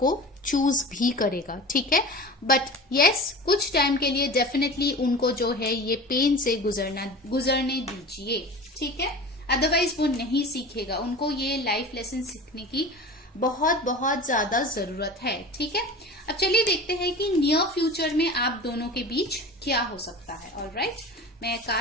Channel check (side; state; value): both; normal; correlation 0.35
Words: चूज भी करेगा, ठीक है। बट यस, कुछ टाइम के लिए डेफिनेटली उनको जो है ये पेन से गुजरने दीजिए, ठीक है। अदरवाइज वो नहीं सीखेगा, उनको ये लाइफ लेसन सीखने की बहुत बहुत ज्यादा जरूरत है, ठीक है। अब चलिए देखते हैं कि नियर फ्यूचर में आप दोनों के बीच क्या हो सकता है। ऑलराइट, मैं